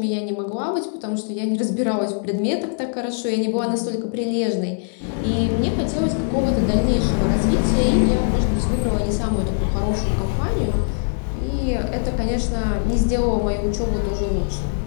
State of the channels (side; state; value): right; silent; 61 dB below the other